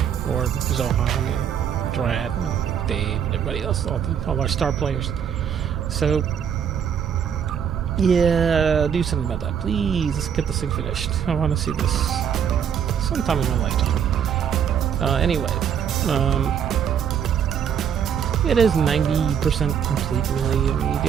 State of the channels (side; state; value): left; quieter; 8.2 dB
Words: Or Zohan and Drat and Dave and everybody else, all our star players. So, yeah, do something about that, please. Let's get this thing finished. I want to see this sometime in my lifetime. Anyway, it is 90% complete, really. I mean, you